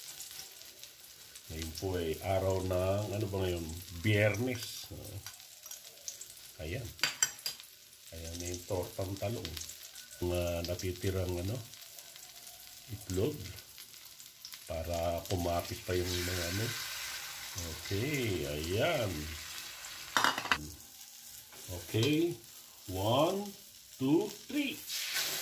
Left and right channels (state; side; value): identical; both; correlation 1.00